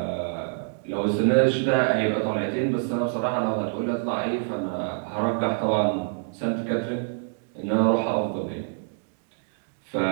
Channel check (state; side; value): silent; left; digital silence